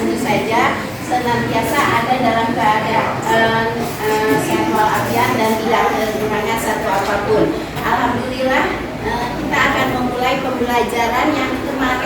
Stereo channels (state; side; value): identical; both; correlation 1.00